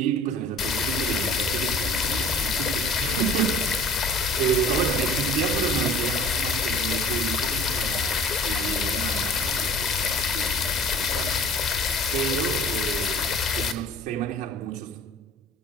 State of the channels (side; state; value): both; normal; correlation 0.48